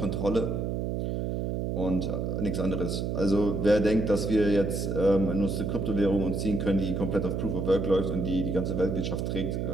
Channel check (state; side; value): noise; right; hum, 1 dB below the sound